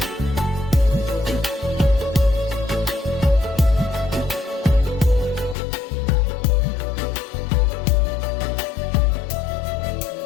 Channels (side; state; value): right; drops out; at 5.6 s